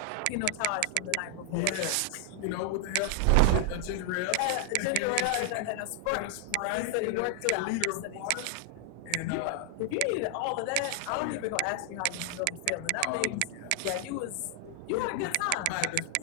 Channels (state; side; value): different; both; correlation 0.00